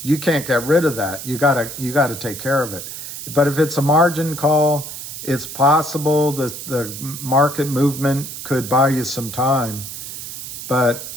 you can't get rid of that. You gotta take care of it. But if it's a margin call, it's possible the market movement could buy you some time. But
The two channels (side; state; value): right; noise; hiss, 9 dB below the sound